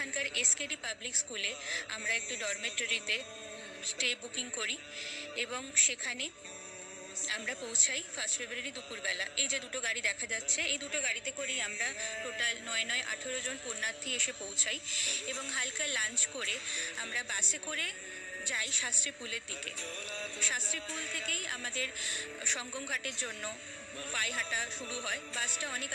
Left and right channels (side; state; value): both; identical; correlation 1.00